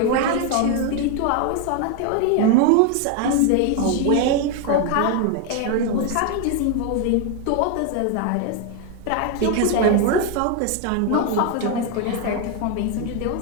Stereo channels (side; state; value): both; different; correlation 0.01